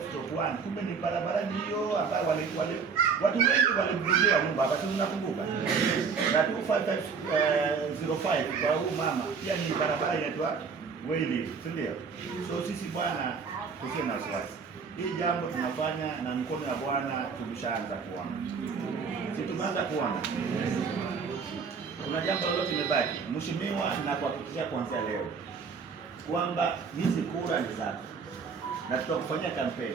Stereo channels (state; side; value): quieter; left; 5.6 dB